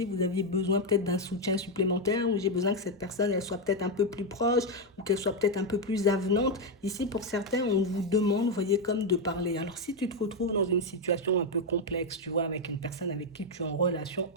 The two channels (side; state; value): both; normal; correlation 0.04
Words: vous aviez besoin peut-être d'un soutien supplémentaire, ou j'ai besoin que cette personne, elle soit peut-être un peu plus proche, ou qu'elle soit peut-être un peu plus avenante. Ici, pour certains, on vous demande, vous voyez, comme de parler. Alors, si tu te retrouves dans une situation un peu complexe, tu vois, avec une personne avec qui tu es en relation